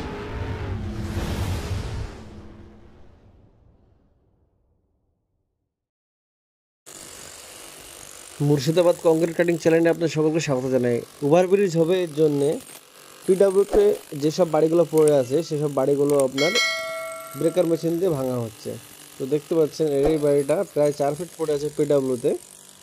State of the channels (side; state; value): both; identical; correlation 1.00